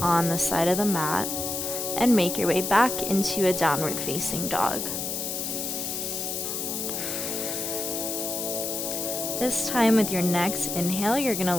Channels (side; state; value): left; noise; hiss, 3 dB below the sound